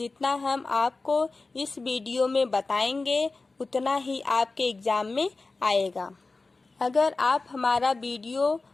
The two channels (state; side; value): quieter; right; 3.6 dB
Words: हम आपको इस वीडियो में बताएंगे उतना ही आपके एग्ज़ाम में आएगा। अगर आप हमारा वीडियो